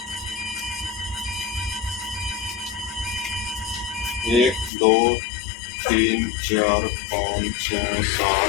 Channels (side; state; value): right; drops out; at 4.7 s